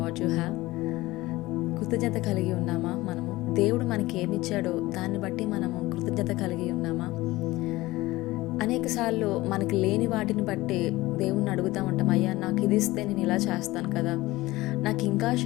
what you have? కృతజ్ఞత కలిగి ఉన్నామా? మనము దేవుడు మనకి ఏమిచ్చాడో దాన్ని బట్టి మనము కృతజ్ఞత కలిగి ఉన్నామా? అనేకసార్లు మనకి లేని వాటిని బట్టి దేవుణ్ణి అడుగుతూ ఉంటాం, అయ్యా నాకు ఇది ఇస్తే నేను ఇలా చేస్తాను కదా, నాకు ఇంకా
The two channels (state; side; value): quieter; right; 19.0 dB